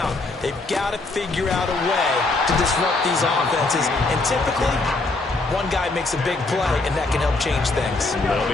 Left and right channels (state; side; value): quieter; right; 3.3 dB